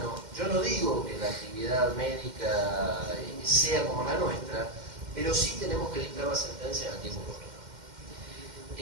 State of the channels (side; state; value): left; late; 2.1 ms